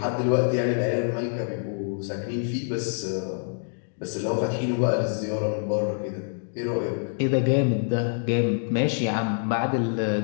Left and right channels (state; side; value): silent; right; digital silence